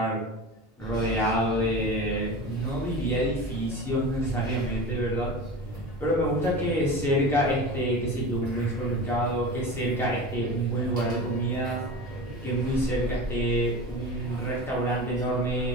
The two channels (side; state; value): both; normal; correlation 0.31